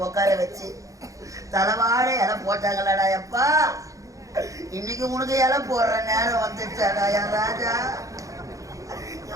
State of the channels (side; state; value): left; late; 0.16 ms